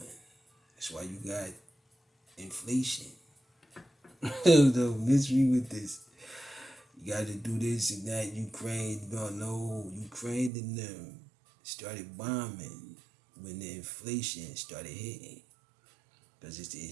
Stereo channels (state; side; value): drops out; left; at 10.5 s